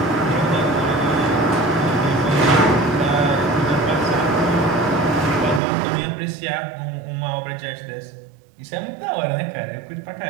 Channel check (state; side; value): drops out; left; at 5.6 s